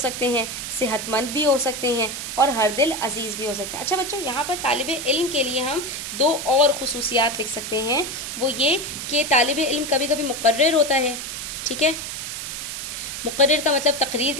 ہیں، صحت مند بھی ہو سکتے ہیں، اور ہر دل عزیز بھی ہو سکتے ہیں۔ اچھا بچوں، یہاں پر طالب علم کے لیے ہم دو اور خصوصیات لکھ سکتے ہیں، وہ یہ کہ طالب علم کبھی کبھی مقرر ہوتا ہے، ٹھیک ہے، مقرر کا مطلب تقریر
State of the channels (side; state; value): right; noise; hiss, 6 dB below the sound